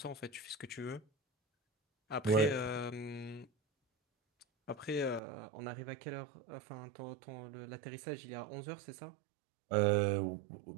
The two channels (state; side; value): drops out; left; at 5.2 s